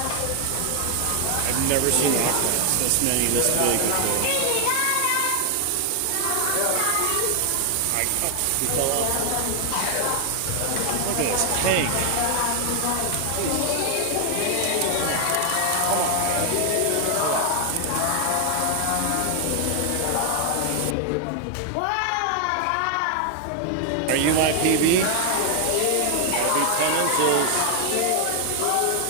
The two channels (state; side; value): different; both; correlation 0.00